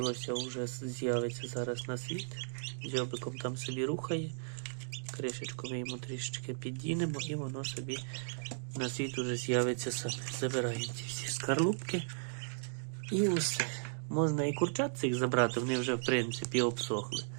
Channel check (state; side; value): silent; left; digital silence